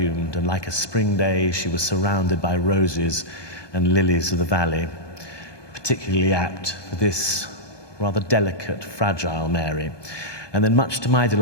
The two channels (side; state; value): right; late; 1.2 ms